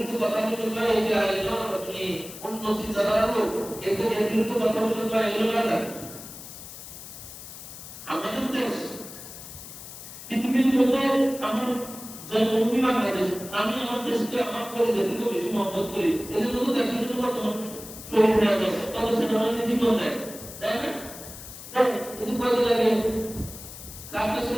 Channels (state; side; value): noise; left; hiss, 13 dB below the sound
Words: কথা বলে বা এই যে আপনি অন্য চিন্তাধারা লোক, এর বিরুদ্ধে কথা বলে বা এগুলো না যায়। আমাদের দেশ পৃথিবীর মধ্যে আমার জন্মভূমি বাংলাদেশ, আমি আমার দেশকে আমার পরিচয় থেকে বেশি মহব্বত করি। এই জন্য তো দেশের জন্য বর্তমান শহীদ হয়ে গেছে, তত সেটা আমাদের জীবন দেয়, তাই না? এই যে কয়দিন আগে কাপড়